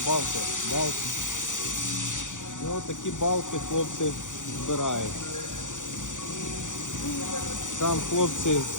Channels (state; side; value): late; right; 0.86 ms